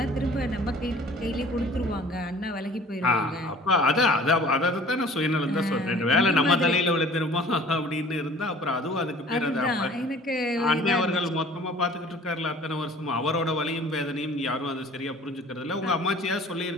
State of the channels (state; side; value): normal; both; correlation 0.49